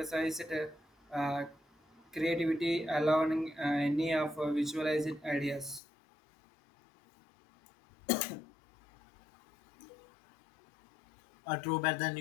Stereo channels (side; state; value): right; drops out; at 5.8 s